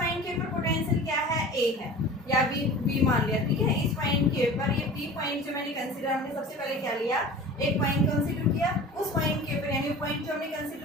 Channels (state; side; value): normal; both; correlation 0.39